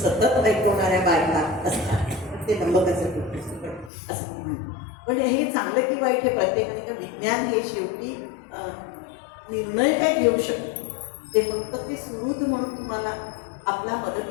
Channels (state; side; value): drops out; right; at 3.9 s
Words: ऐकवणाऱ्या बायका असतात. ते नंबकाचं कुठं असं म्हणून. पण हे चांगलं की वाईट हे प्रत्येकाने का विज्ञान हे शेवटी निर्णय काय घेऊ शकतो, ते फक्त ते सुरुद म्हणून तुम्हाला आपला